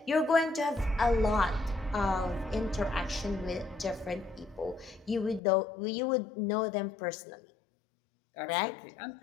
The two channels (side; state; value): right; drops out; at 5.4 s